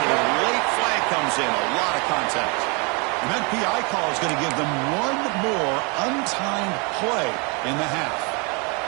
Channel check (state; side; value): quieter; left; 31.8 dB